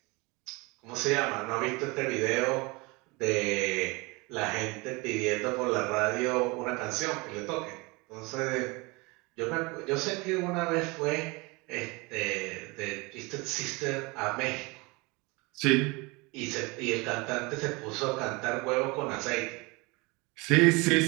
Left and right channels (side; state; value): left; quieter; 25.9 dB